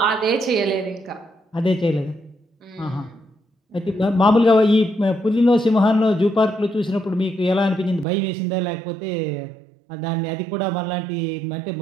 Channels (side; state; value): left; drops out; at 8.1 s